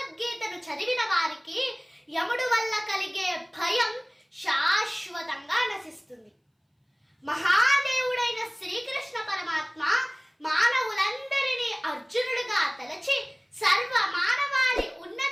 చదివిన వారికి యముడు వల్ల కలిగే భయం శాశ్వతంగా నశిస్తుంది. మహాదేవుడైన శ్రీకృష్ణ పరమాత్మ మానవులందరినీ అర్జునుడిగా తలచి సర్వ మానవాళి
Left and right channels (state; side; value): identical; both; correlation 1.00